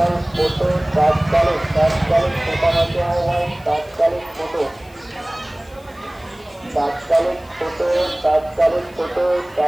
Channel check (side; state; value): left; noise; hiss, 28 dB below the sound